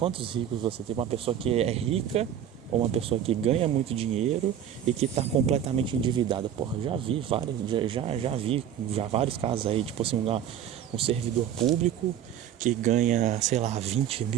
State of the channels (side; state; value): left; quieter; 9.8 dB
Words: ricos você tem? Uma pessoa que é rica ou uma pessoa que ganha muito dinheiro e que está completamente endividada? Porra, já vi vários casos aí, tipo assim, um servidor público que ganha, sei lá, 20